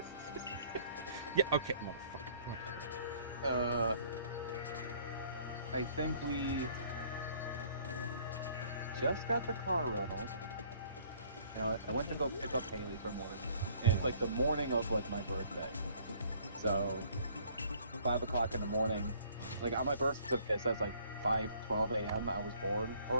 Yeah, okay, motherfucker. I think we just got the car rental. Now, I went to go pick up Haley from work, and it's like the morning of like my birthday. So 5 o'clock in the morning, like on my birth certificate it says like 5:12 a.m. I was born or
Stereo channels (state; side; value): inverted; both; correlation -0.58